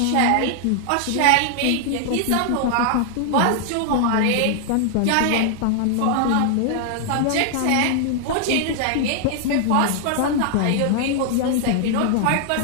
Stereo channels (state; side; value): different; both; correlation 0.00